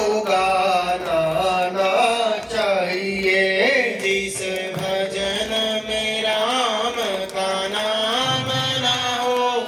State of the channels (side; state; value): both; identical; correlation 1.00